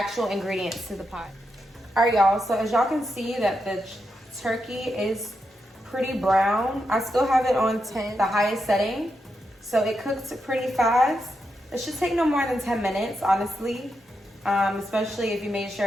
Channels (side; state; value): both; normal; correlation 0.85